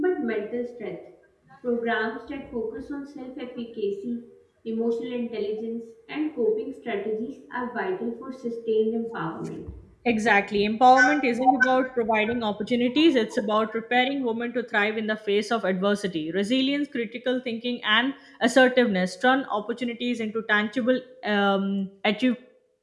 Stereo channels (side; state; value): both; identical; correlation 1.00